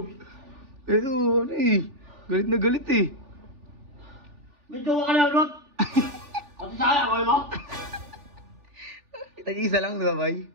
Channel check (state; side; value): late; left; 3.4 ms